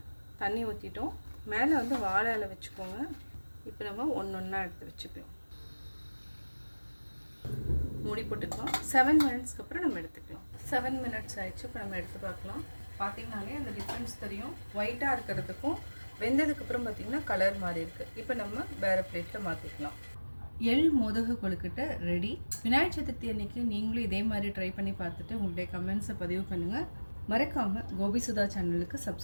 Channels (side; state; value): both; inverted; correlation -1.00